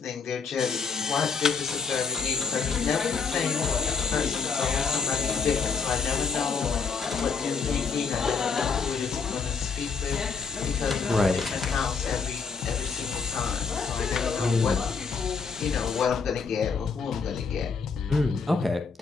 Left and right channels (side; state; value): right; quieter; 5.3 dB